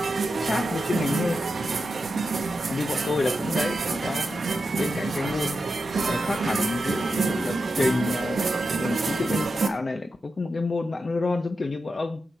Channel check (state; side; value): normal; both; correlation 0.89